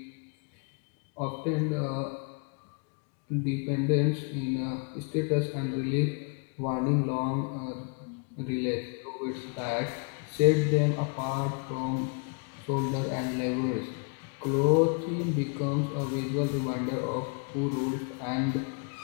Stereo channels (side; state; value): right; quieter; 38.3 dB